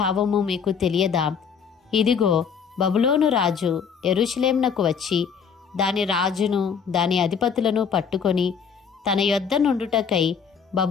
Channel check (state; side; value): quieter; right; 6.7 dB